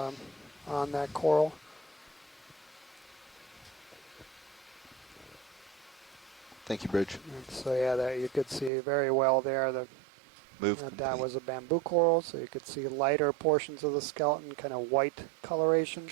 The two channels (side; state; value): left; drops out; at 8.7 s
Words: on that coral. Thank you, Bridge. And so yeah, that you could see very well there. That was a bamboo coral, so you could see lighter portions of the skeleton, kind of white coloration.